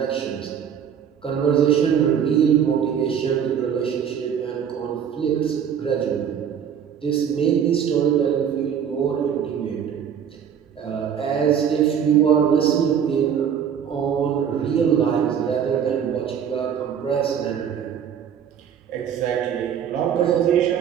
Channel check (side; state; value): left; quieter; 8.3 dB